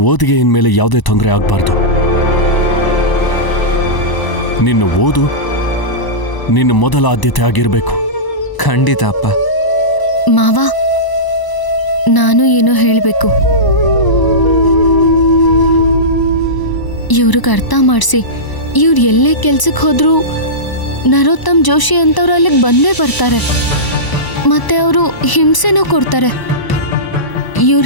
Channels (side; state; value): right; late; 1.0 ms